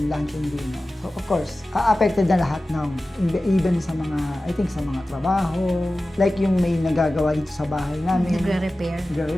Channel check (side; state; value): both; normal; correlation 0.96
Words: lunch and dinner. So of course, affected na lahat ng, even sa mga, I think sa mga trabaho. Like yung may nagagawa dito sa bahay namin.